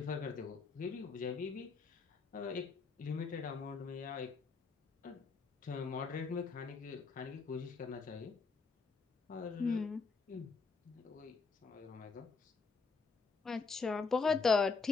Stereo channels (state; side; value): quieter; right; 4.6 dB